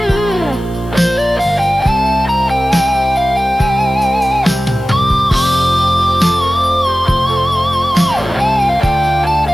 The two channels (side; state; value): left; noise; hiss, 27 dB below the sound